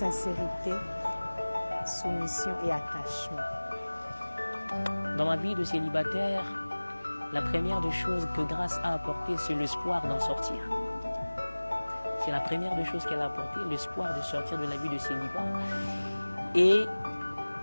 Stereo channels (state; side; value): inverted; both; correlation -1.00